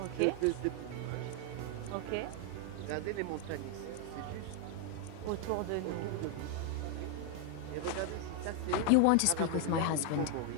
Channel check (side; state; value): both; different; correlation 0.01